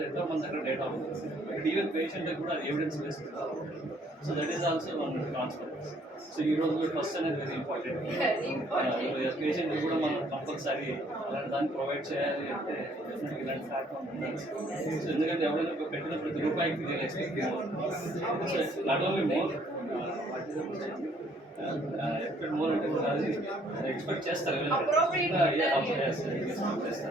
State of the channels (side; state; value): both; normal; correlation 0.63